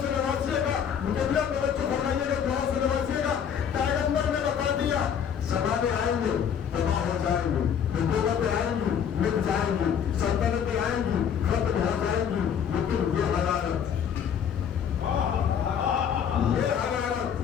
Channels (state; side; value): quieter; right; 8.1 dB